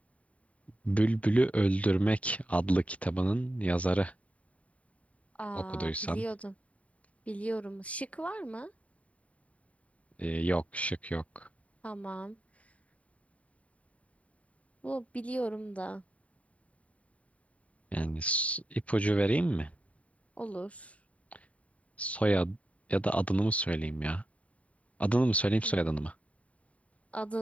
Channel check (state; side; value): late; right; 0.067 ms